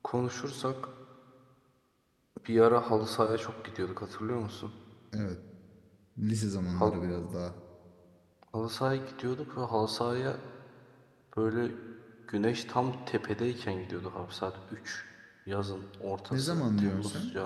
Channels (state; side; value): identical; both; correlation 1.00